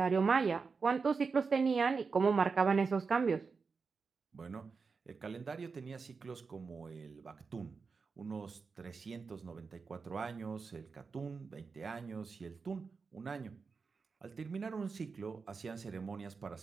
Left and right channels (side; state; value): left; quieter; 4.9 dB